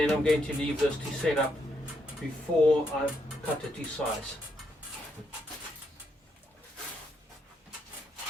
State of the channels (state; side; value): normal; both; correlation 0.78